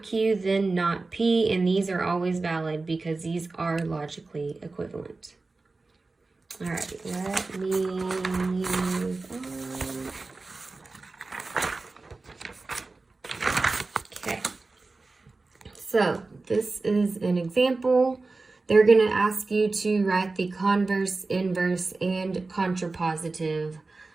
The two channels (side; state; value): left; quieter; 3.6 dB